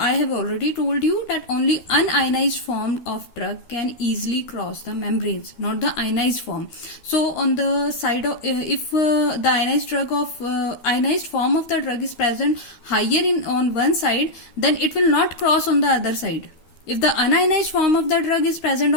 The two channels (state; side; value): late; right; 13 ms